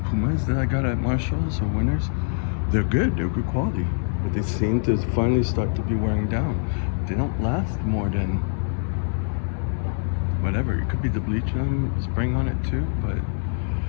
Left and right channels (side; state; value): right; silent; 62 dB below the other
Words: Pumas that I got at Marshalls or Winners, they're good quality, but they seem to finally start to be wearing down. They don't last more than whatever. It could be the bleach I'm spraying on it too, but